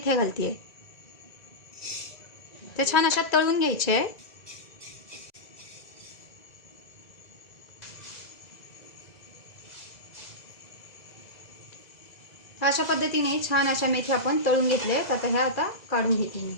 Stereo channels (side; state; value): right; late; 2.0 ms